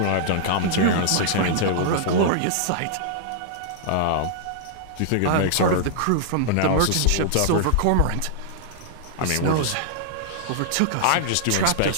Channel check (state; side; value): different; both; correlation -0.01